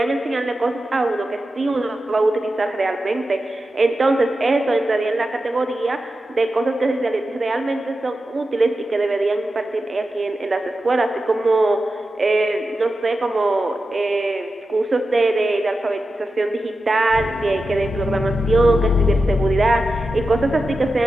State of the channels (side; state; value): both; normal; correlation 0.91